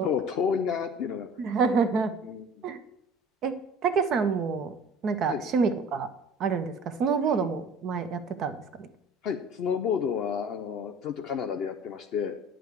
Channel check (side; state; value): both; normal; correlation 0.45